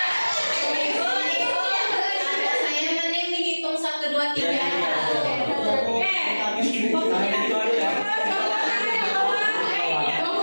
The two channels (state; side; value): inverted; both; correlation -1.00